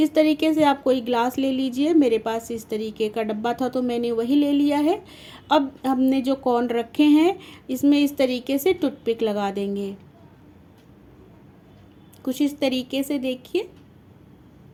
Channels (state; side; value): identical; both; correlation 1.00